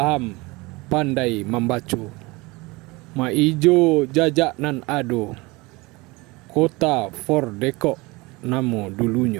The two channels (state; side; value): quieter; left; 23.8 dB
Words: pandai membaca. Ma ijo jajak nan ado, kota for dekok namo